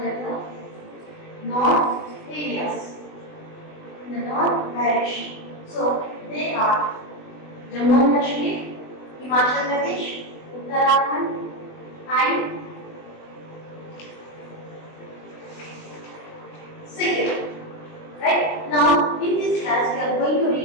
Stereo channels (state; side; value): late; right; 20 ms